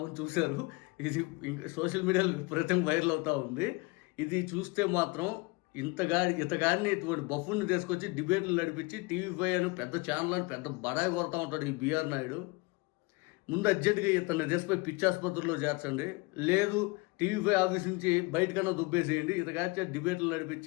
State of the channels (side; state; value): right; quieter; 26.2 dB